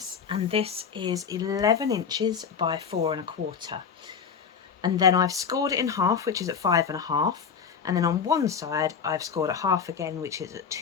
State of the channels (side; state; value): right; quieter; 6.6 dB